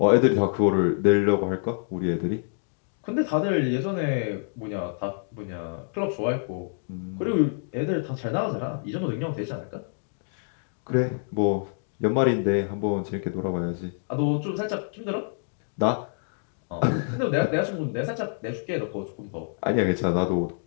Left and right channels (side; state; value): right; silent; digital silence